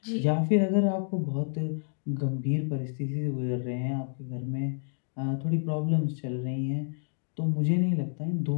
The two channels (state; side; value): silent; right; digital silence